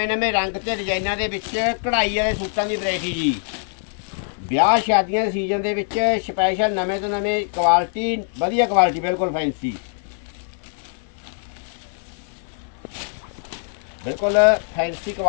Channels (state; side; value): silent; right; 60 dB below the other